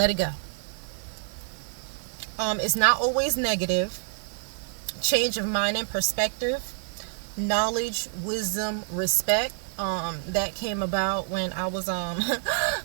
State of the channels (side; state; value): left; silent; 60 dB below the other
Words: it go. It's not always negative. Change of mind and perspective. Knowledge, wisdom, respect. That came about when I was so